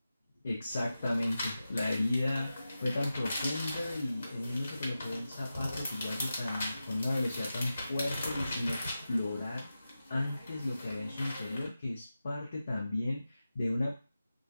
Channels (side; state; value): both; inverted; correlation -0.93